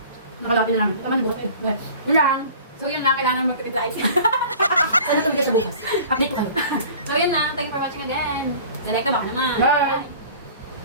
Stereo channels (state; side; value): inverted; both; correlation -0.44